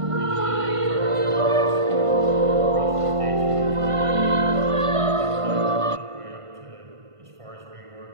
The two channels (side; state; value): left; late; 1.5 ms